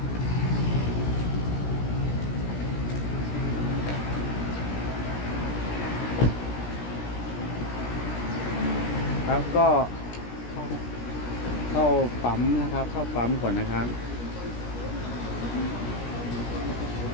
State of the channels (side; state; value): right; late; 17 ms